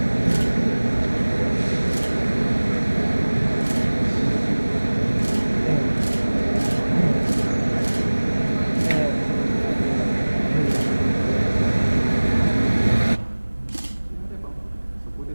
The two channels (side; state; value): both; inverted; correlation -1.00